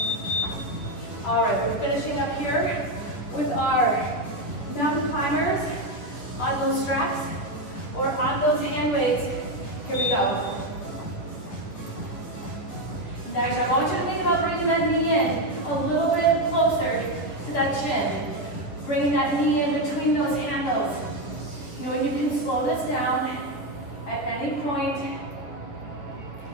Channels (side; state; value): right; late; 11 ms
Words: All right, we're finishing up here with our mountain climbers on those straps or on those hand weights. Here we go. Next, I want you to think about bringing that knee in a little bit closer to that chin. Bringing that knee in between those handles. You know, and you can slow this down at any point.